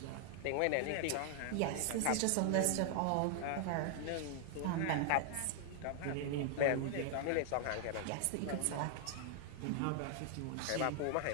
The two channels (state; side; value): different; both; correlation 0.00